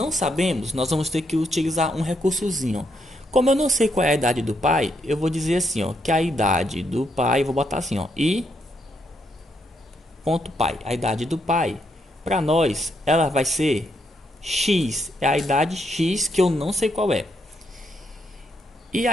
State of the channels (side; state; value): both; normal; correlation 0.77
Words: sabemos, nós vamos ter que utilizar um recursozinho. Como eu não sei qual é a idade do pai, eu vou dizer assim, ó, que a idade do pai, vou botar assim, ó, i ponto pai. A idade do pai, para nós, ela vai ser x, é a idade x que eu não sei qual é. E